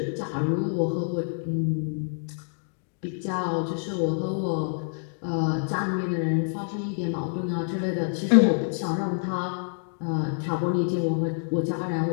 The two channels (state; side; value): silent; right; digital silence